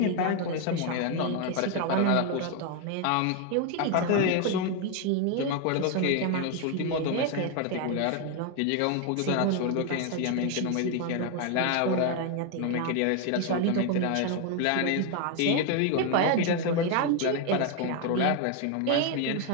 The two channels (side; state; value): both; different; correlation 0.01